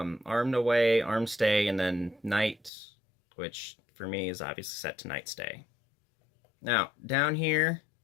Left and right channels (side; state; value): right; drops out; at 2.7 s